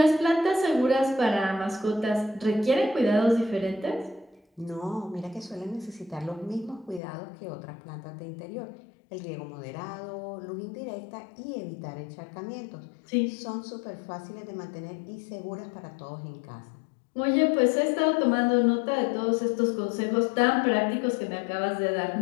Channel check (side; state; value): right; drops out; at 7.0 s